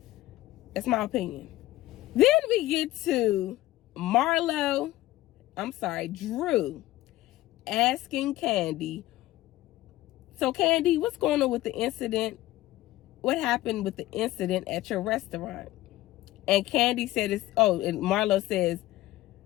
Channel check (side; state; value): right; quieter; 16.5 dB